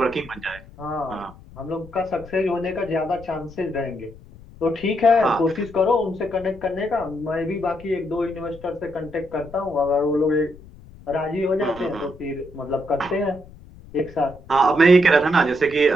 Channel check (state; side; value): noise; left; rumble, 20 dB below the sound